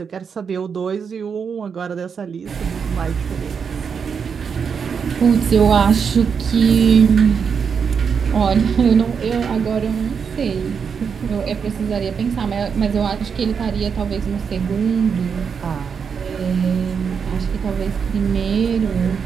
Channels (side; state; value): left; quieter; 6.4 dB